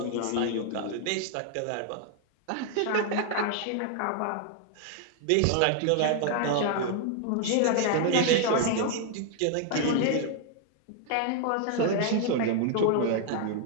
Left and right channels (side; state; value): both; different; correlation 0.00